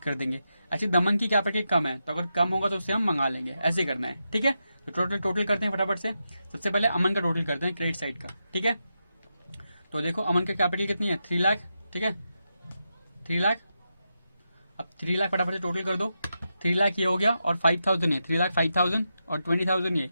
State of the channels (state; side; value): inverted; both; correlation -0.87